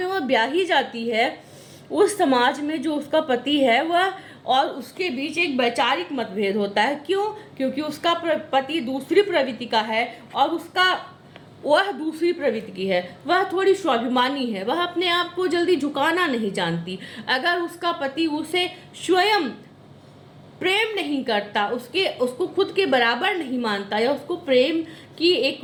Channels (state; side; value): identical; both; correlation 1.00